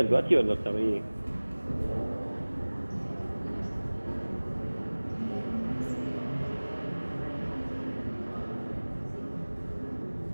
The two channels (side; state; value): both; inverted; correlation -1.00